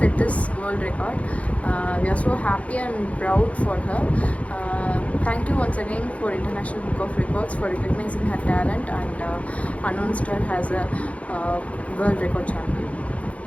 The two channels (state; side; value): late; right; 0.065 ms